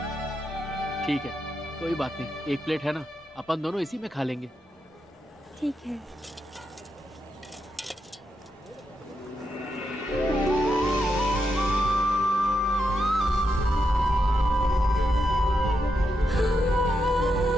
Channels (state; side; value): normal; both; correlation 0.84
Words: ठीक है, कोई बात नहीं। 1 प्लेट है ना, अपन दोनों इसी में खा लेंगे। ठीक है।